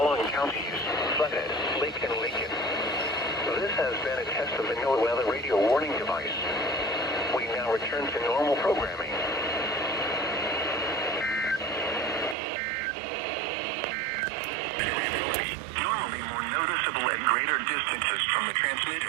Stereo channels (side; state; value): left; drops out; at 12.4 s